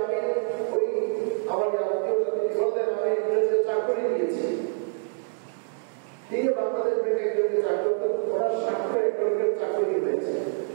আমি ওই আমার আত্মীয়তা তিনি বললেন আমি ইংরেজিতে চাকরি নিয়েছি। তিনি বাংলাদেশ ব্যাংকে একজনকে চাকরি করতেন, ওনার স্বাক্ষর একজনকে চাকরি হয়েছে।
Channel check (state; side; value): silent; left; 61 dB below the other